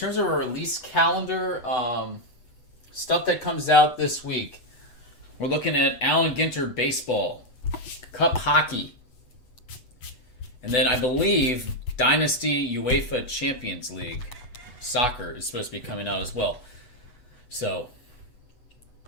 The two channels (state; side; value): late; right; 8.0 ms